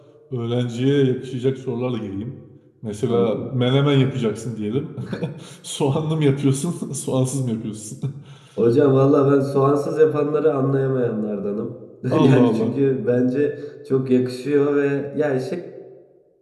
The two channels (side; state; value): both; identical; correlation 1.00